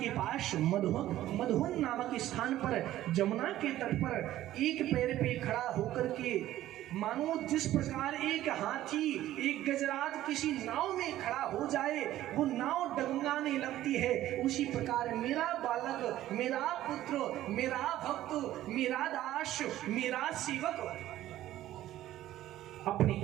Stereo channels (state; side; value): quieter; left; 13.9 dB